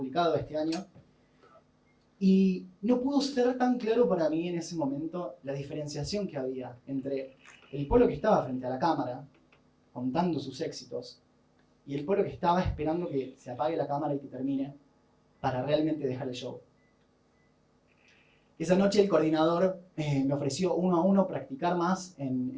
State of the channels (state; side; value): identical; both; correlation 1.00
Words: este año. Y no pudo ser tan claro para mí en ese momento la diferenciación que había entre el Polo que estaba frente a la cámara, contando sus éxitos, y el Polo que estaba esperando que se apague la cámara y que termine para realmente dejar el show. Esa noche el coordinador me ofreció uno a uno practicar más